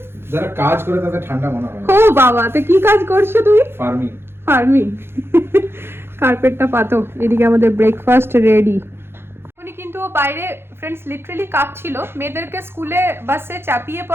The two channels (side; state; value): left; late; 0.11 ms